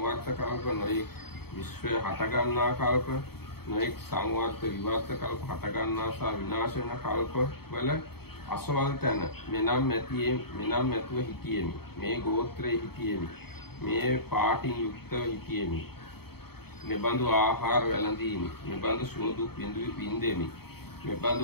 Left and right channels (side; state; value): right; late; 0.96 ms